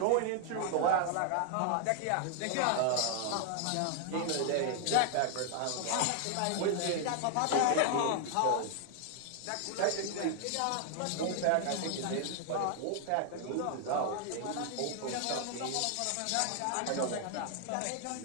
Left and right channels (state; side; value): different; both; correlation 0.00